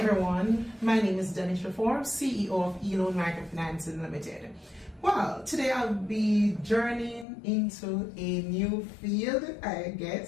my name is Denisher Forbes, CEO of Microfinancing Limited. Well, today I'll be journeying into a new field, I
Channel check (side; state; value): right; drops out; at 7.2 s